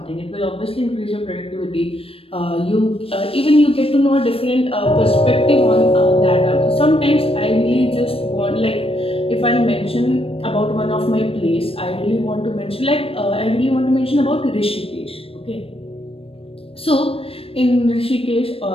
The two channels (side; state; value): right; late; 0.28 ms